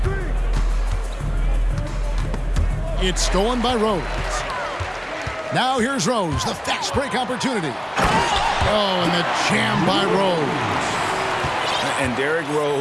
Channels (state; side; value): identical; both; correlation 1.00